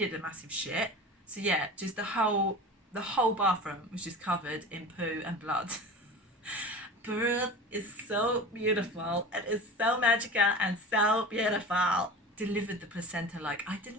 a massive shit. So yeah, just the whole bathroom was just covered in poo and blood. Birth is so beautiful. It is so magical and so beautiful. Delivered the placenta, like I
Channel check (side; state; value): both; normal; correlation 0.34